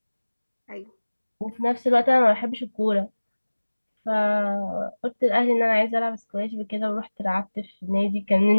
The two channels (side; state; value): both; inverted; correlation -1.00